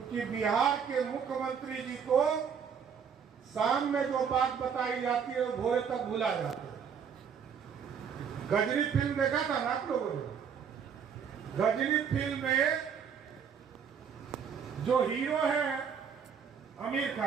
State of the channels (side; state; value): left; quieter; 7.1 dB